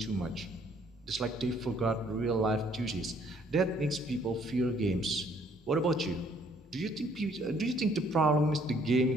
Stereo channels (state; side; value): normal; both; correlation 0.63